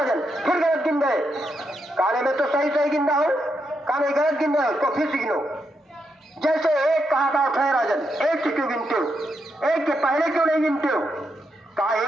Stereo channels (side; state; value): both; normal; correlation 0.82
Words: फिर गलत गिन रहे। कहने में तो सही सही गिन रहा हूं। कहने गलत गिन रहे हो तो फिर से गिनो। जैसे एक कहा था है राजन, एक से क्यों गिनते हो, एक के पहले क्यों नहीं गिनते हो। कहा